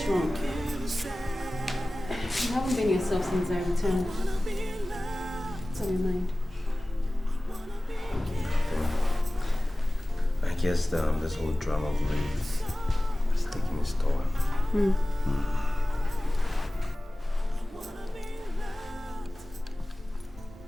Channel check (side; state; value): both; normal; correlation 0.97